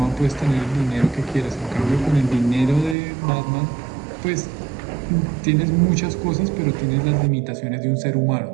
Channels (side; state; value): left; drops out; at 3.0 s